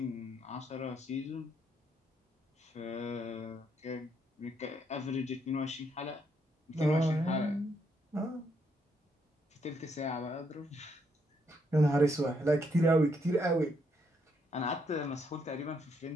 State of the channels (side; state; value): both; normal; correlation 0.74